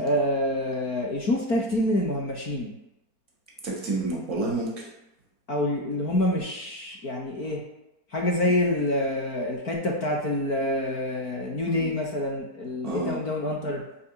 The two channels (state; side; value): late; right; 4.5 ms